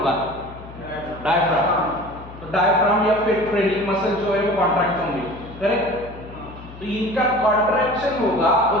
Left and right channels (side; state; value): left; noise; hum, 16 dB below the sound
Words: डायफ्राम। तो डायफ्राम या फिर ट्रेनिंग मसल जो है वो कॉन्ट्रैक्ट होंगे, करेक्ट। तो इनका कॉन्ट्रैक्शन होगा, और